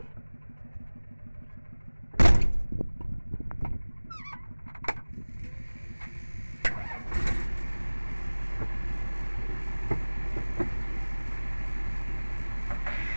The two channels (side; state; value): both; inverted; correlation -1.00